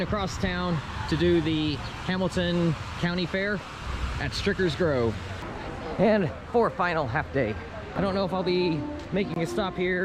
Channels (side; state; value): both; identical; correlation 1.00